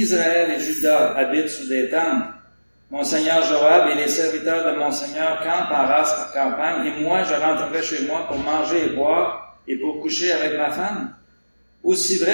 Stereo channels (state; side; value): inverted; both; correlation -1.00